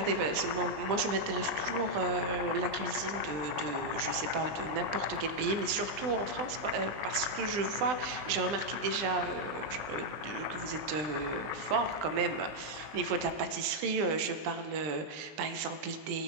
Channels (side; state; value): left; late; 20 ms